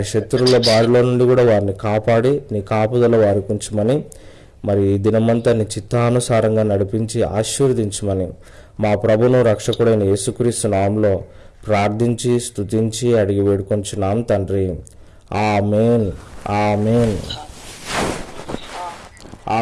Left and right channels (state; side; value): identical; both; correlation 1.00